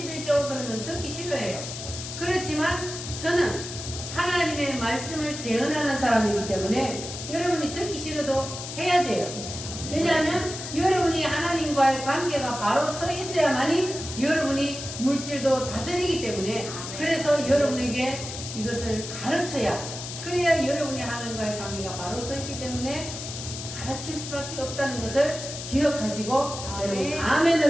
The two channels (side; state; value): left; noise; hiss, 8 dB below the sound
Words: 그러면 듣기 싫어해요. 그렇지만 저는 하나님의 말씀을 대언하는 사람이기 때문에 여러분이 듣기 싫어도 해야 돼요. 왜냐하면 여러분이 하나님과의 관계가 바로 서 있어야만이 여러분이 물질도 다스리기 때문에, 그래서 여러분에게 이것을 가르쳐야, 그래야 여러분이 하나님과의 관계가 바로 서 있기 때문에 가르칠 수밖에 없다는 것을 기억하시고 여러분